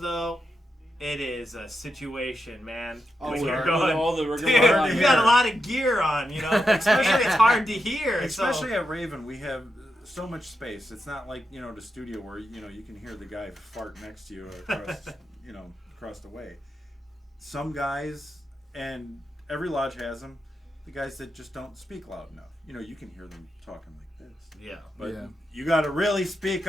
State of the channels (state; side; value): normal; both; correlation 0.86